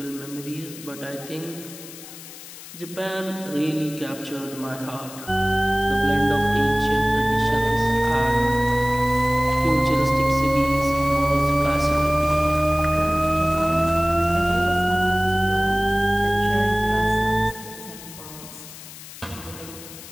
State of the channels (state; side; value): noise; left; hiss, 15 dB below the sound